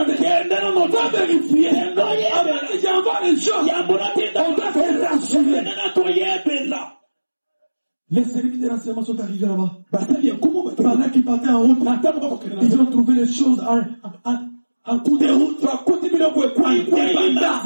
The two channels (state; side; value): inverted; both; correlation -1.00